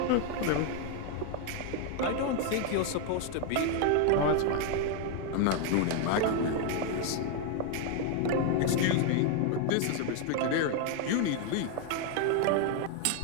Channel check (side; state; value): both; different; correlation 0.00